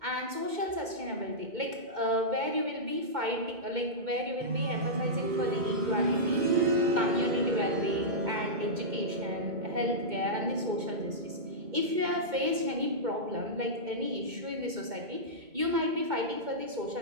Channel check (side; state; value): left; late; 2.1 ms